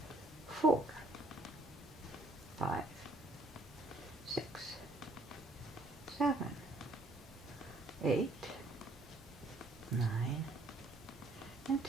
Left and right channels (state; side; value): normal; both; correlation 0.63